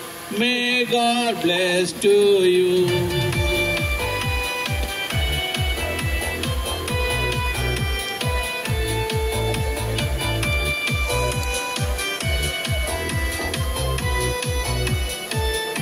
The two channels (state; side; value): identical; both; correlation 1.00